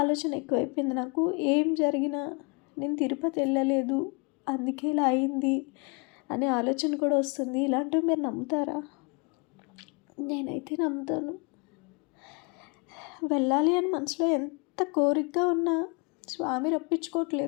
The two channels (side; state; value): right; quieter; 32.8 dB